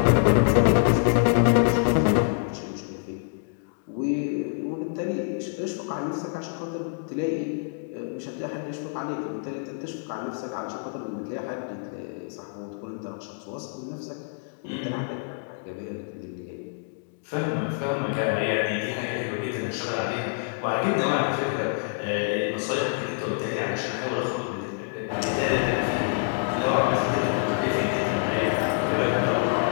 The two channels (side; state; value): right; silent; digital silence